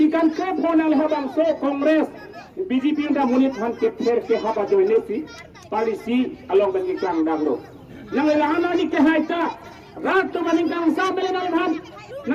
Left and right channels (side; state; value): both; identical; correlation 1.00